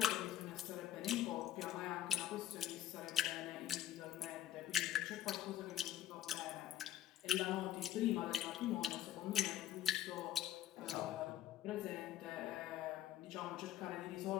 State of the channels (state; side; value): quieter; right; 12.6 dB